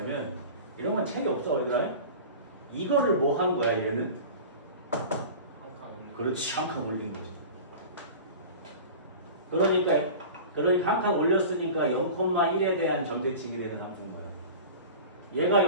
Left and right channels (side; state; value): both; inverted; correlation -0.36